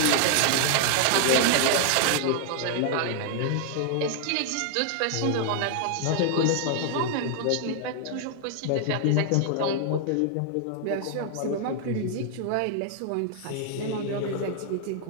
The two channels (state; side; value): different; both; correlation 0.00